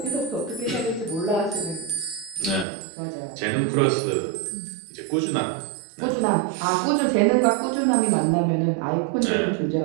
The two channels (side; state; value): left; drops out; at 2.7 s